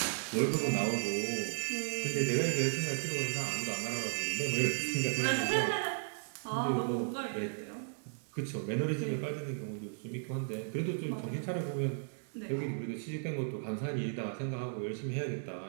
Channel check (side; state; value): left; silent; digital silence